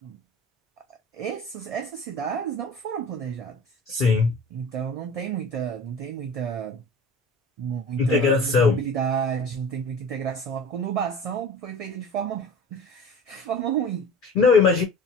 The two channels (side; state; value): both; normal; correlation 0.39